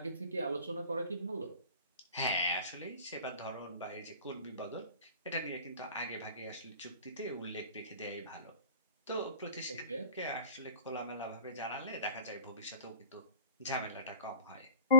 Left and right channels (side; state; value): both; inverted; correlation -0.41